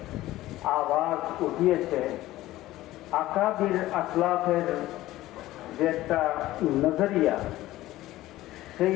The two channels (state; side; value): quieter; right; 16.1 dB